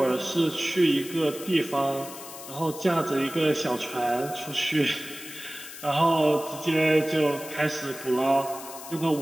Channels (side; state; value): left; noise; hiss, 13 dB below the sound